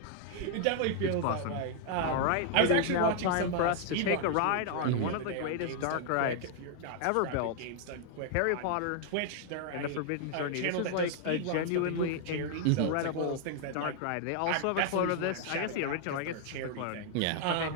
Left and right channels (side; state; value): both; different; correlation 0.00